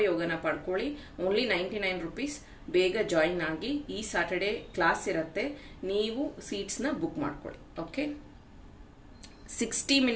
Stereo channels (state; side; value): identical; both; correlation 1.00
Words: ಪಡ್ಕೊಳ್ಳಿ. Only 99 rupees. ಬೇಗ ಜಾಯಿನ್ ಆಗಿ. ಈ ಸ್ಯಾಟರ್ಡೆ ಕ್ಲಾಸ್ ಇರುತ್ತೆ, ನೀವು ಸೀಟ್ಸ್ನ ಬುಕ್ ಮಾಡ್ಕೊಳ್ಳಿ. ಓಕೆ, 60